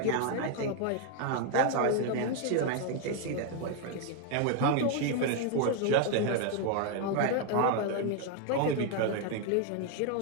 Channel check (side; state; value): both; different; correlation 0.01